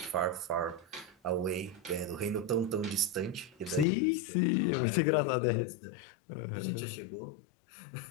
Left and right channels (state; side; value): drops out; right; at 3.9 s